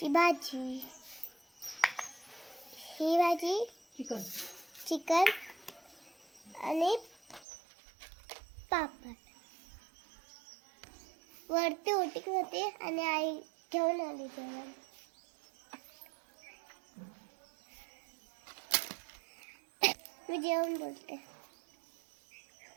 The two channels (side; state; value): left; drops out; at 7.5 s